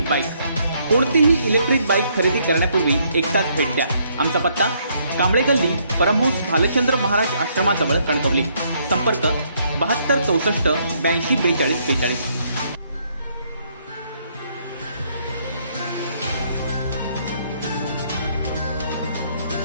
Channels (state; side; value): inverted; both; correlation -0.70